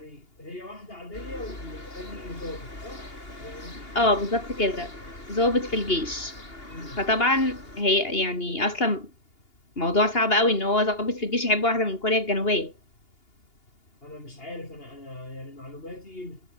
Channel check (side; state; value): right; late; 2.8 ms